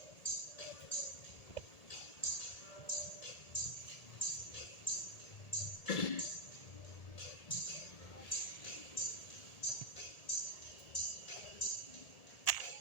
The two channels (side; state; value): right; late; 1.8 ms